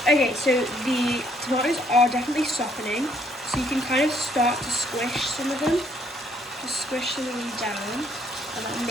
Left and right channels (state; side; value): normal; both; correlation 0.67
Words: Okay, so the tomatoes are definitely softening. So you can kind of start to squish some of them. Just squish some of them down. And then